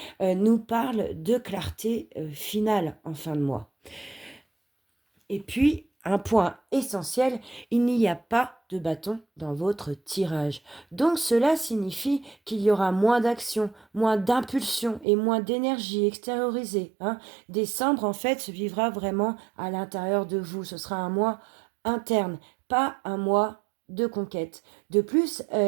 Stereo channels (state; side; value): drops out; left; at 15.1 s